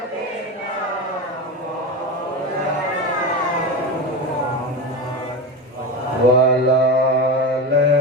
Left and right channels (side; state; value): both; normal; correlation 0.20